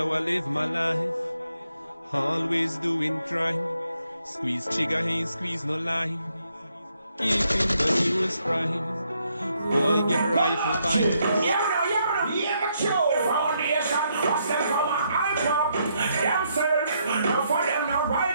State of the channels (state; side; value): inverted; both; correlation -0.76